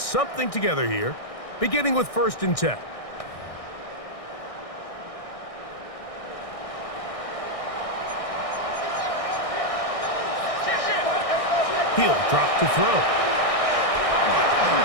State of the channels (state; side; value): late; right; 1.6 ms